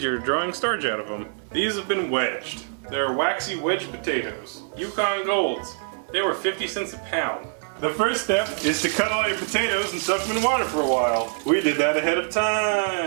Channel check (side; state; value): left; silent; 62 dB below the other